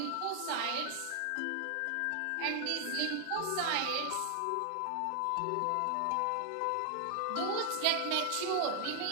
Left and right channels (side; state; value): both; different; correlation 0.00